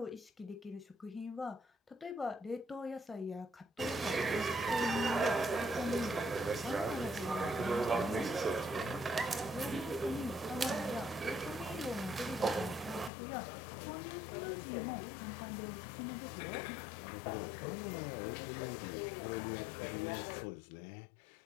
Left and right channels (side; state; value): right; drops out; at 13.1 s